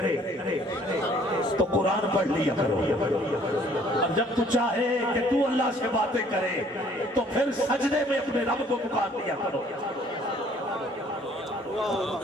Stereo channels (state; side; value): normal; both; correlation 0.59